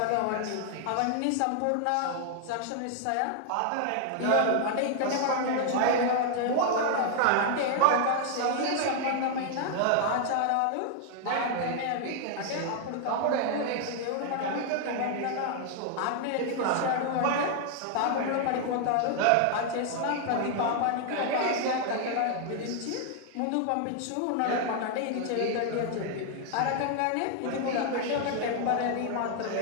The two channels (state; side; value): different; both; correlation 0.00